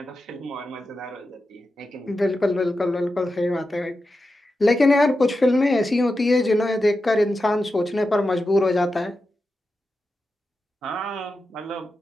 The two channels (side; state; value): both; normal; correlation 0.90